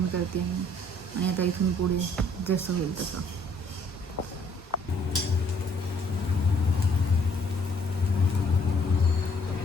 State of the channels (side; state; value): both; normal; correlation 0.63